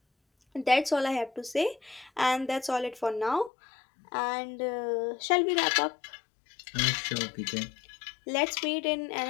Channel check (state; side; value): drops out; right; at 3.5 s